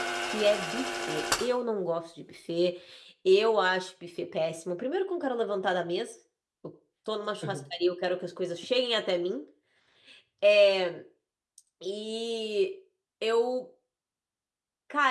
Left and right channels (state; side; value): identical; both; correlation 1.00